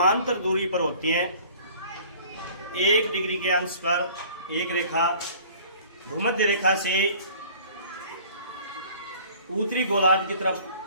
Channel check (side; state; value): both; inverted; correlation -0.50